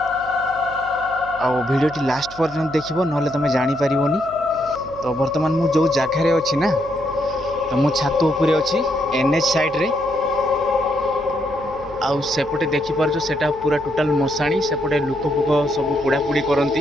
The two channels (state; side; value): noise; left; hum, 20 dB below the sound